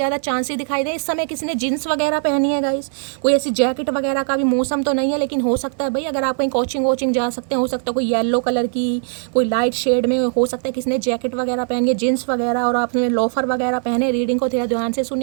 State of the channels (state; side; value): silent; left; 66 dB below the other